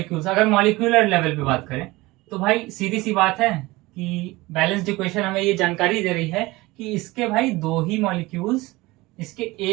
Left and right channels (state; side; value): quieter; left; 20.9 dB